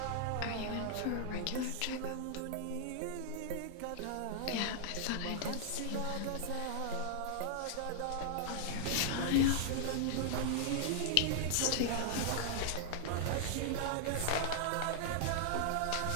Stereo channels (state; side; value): different; both; correlation 0.00